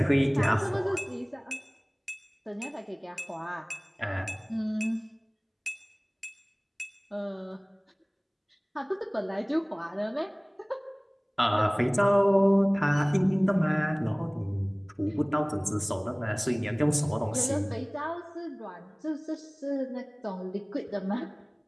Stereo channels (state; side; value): identical; both; correlation 1.00